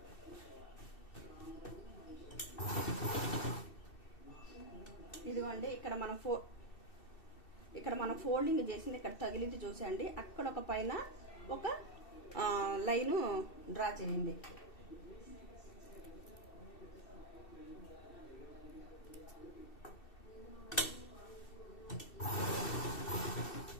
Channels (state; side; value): late; right; 2.7 ms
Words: ఇదిగోండి ఇక్కడ మనం ఫోల్డింగ్ చేసింది ఇక్కడ తగిలింది చూసండి, అక్కడ ఒక పైన ఒక లైను డ్రా చేయండి.